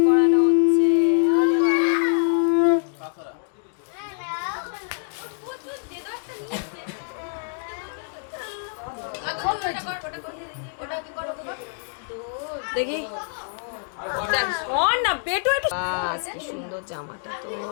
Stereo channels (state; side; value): silent; right; 62 dB below the other